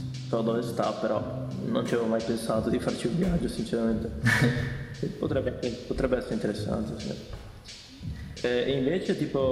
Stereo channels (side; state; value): both; identical; correlation 1.00